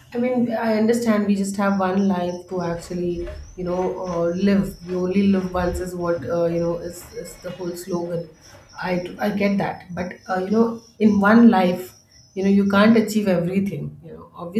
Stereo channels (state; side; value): identical; both; correlation 1.00